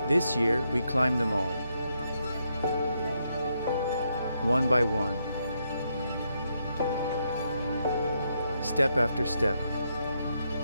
This year, we climbed them all, one by one, step after step,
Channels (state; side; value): inverted; both; correlation -0.79